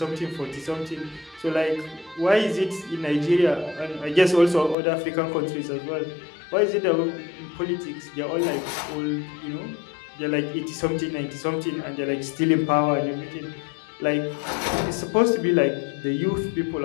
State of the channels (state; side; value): drops out; right; at 4.8 s